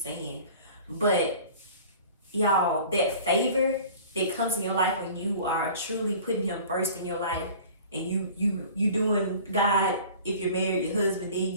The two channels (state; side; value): inverted; both; correlation -0.45